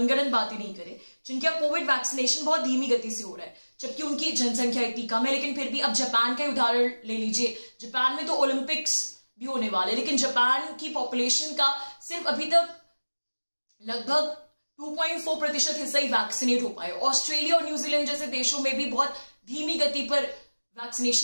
बातें नहीं करें, जिनका कोविड वैक्सीनेशन बहुत धीमी गति से हो रहा है जबकि उनकी जनसंख्या इतनी कम है। लेकिन फिर भी अब जापान का उदाहरण ले लीजिए, जापान में तो ओलंपिक्स भी होने वाले, लेकिन जापान की पॉपुलेशन का सिर्फ अभी तक लगभग 2.4% हिस्सा ही वैक्सीनेट हो पाए। ऑस्ट्रेलिया और न्यूजीलैंड जैसे देशों में भी बहुत धीमी गति पर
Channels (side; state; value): both; inverted; correlation -1.00